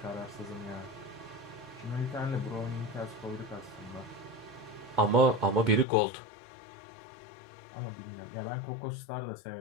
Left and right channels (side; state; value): right; drops out; at 5.9 s